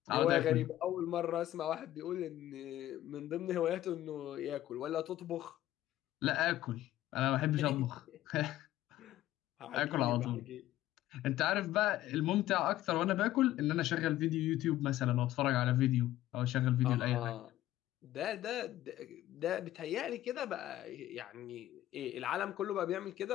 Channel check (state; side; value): quieter; right; 14.2 dB